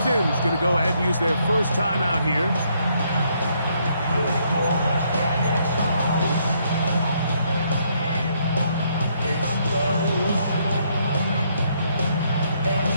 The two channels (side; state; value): both; inverted; correlation -0.72